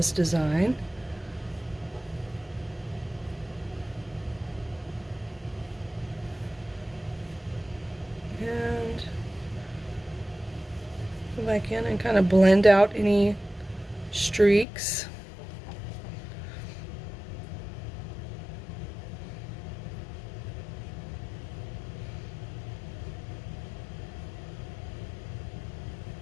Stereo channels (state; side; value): drops out; right; at 14.7 s